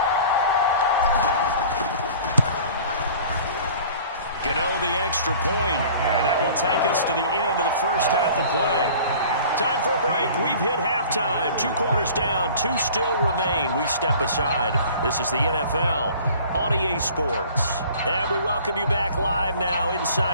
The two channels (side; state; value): both; inverted; correlation -0.47